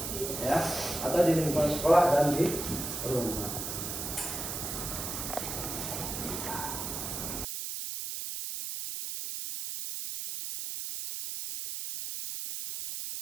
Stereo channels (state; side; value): noise; right; hiss, 5 dB below the sound